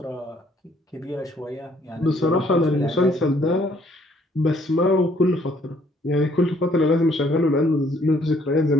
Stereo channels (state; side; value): normal; both; correlation 0.64